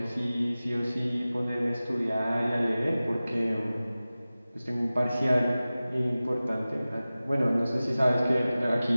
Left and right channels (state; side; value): inverted; both; correlation -0.97